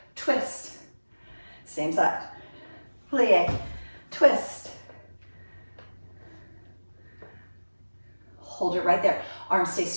twist. Same side. Plie, twist. Hold it right there. Arms stay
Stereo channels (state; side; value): inverted; both; correlation -1.00